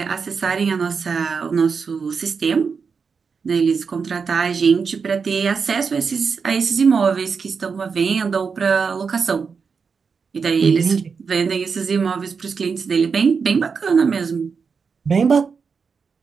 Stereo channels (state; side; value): quieter; left; 5.5 dB